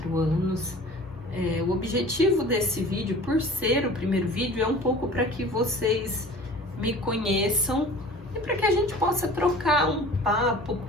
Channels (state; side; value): normal; both; correlation 0.44